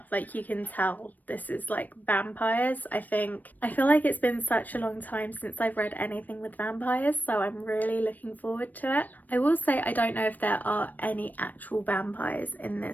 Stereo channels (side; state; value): right; late; 0.084 ms